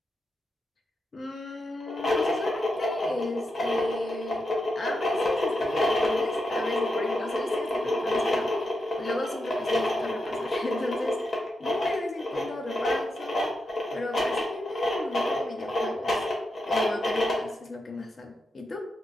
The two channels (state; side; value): normal; both; correlation 0.86